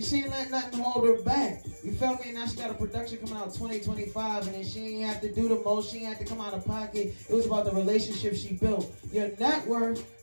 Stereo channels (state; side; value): inverted; both; correlation -1.00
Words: she ain't let nothing hold her back. You feel me? Now she got a production coming out 2025, and then she ain't have to do the most, she ain't have to come out of pocket. It was about the relationship she built. Your network